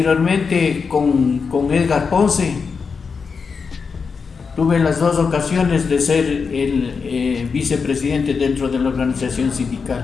con Edgar Ponce. Tuve las dos ocasiones de ser el vicepresidente dentro de la organización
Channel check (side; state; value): right; quieter; 5.4 dB